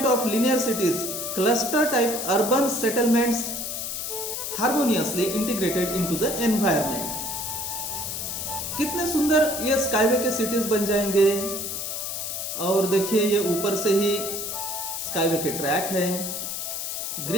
of linear cities, cluster type urban settlements harmoniously integrated into the environment। कितने सुंदर ये स्काईवे के सिटीज बन जाएंगे। और देखिए, ये ऊपर से ही स्काईवे के ट्रैक है,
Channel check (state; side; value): noise; left; hiss, 4 dB below the sound